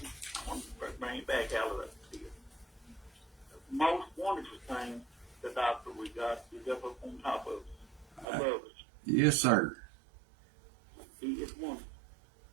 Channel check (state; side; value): drops out; left; at 8.2 s